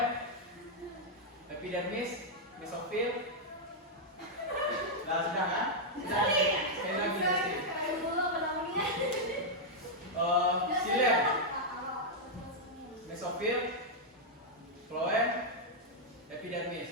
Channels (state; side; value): normal; both; correlation -0.04